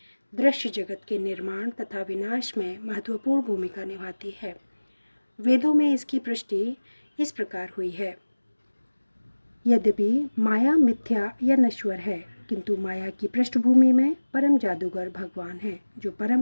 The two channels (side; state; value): both; inverted; correlation -1.00